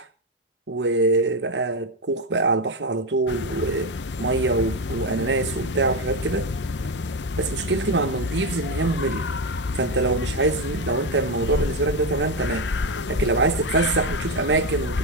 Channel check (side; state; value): both; normal; correlation 0.11